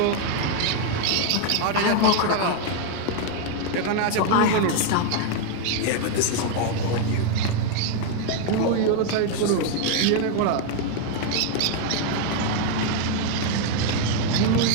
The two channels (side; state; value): both; different; correlation 0.00